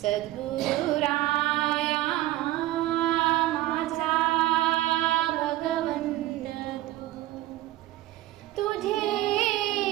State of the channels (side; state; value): left; quieter; 15.8 dB